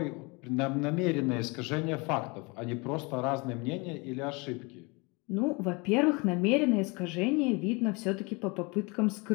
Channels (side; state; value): right; quieter; 28.2 dB